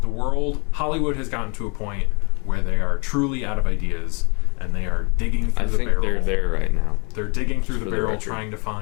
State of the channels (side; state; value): right; quieter; 32.3 dB